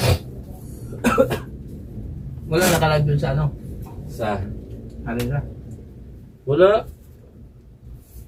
Wala nakalag dun sa ano. Sa? Alin na? Wala.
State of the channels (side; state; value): both; identical; correlation 1.00